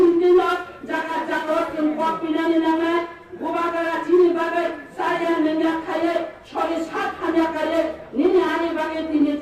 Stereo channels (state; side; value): identical; both; correlation 1.00